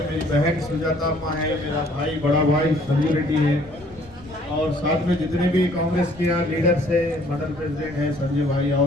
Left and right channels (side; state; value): left; noise; rumble, 23 dB below the sound